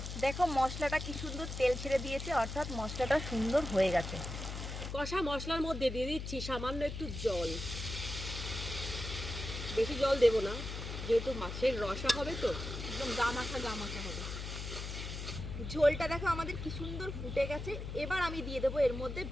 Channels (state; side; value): noise; left; hum, 6 dB below the sound